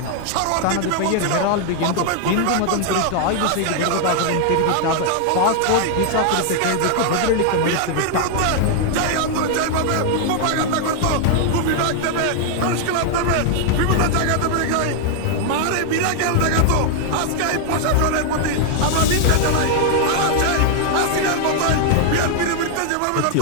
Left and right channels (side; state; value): both; different; correlation 0.00